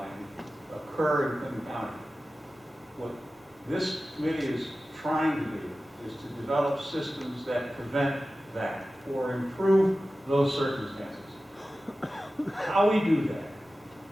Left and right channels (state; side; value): normal; both; correlation 0.95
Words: occur in Clinton County. What this committee is trying to do is to develop systems that prevent that or improve those circumstances. How we do that,